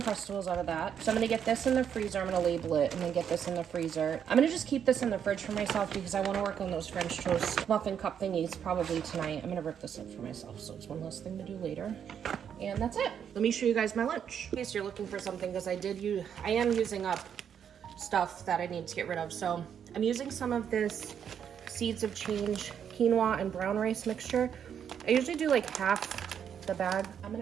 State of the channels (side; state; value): left; quieter; 8.3 dB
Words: out of that. So I'm gonna get this in the freezer. I'm gonna label it and then get this in the freezer. I'm gonna just keep this in the fridge for myself because I wanna work on those French toast muffin cup thingies probably tonight. I'm gonna rip this up for myself, so it's one less thing to do later. And that's it. Let me show you guys my lunch. In case you're looking for something, because I am using up stuff that I need to get rid of. So I'm using some of this Seeds of Change quinoa and brown rice mixture. I usually do like half the bag. I'm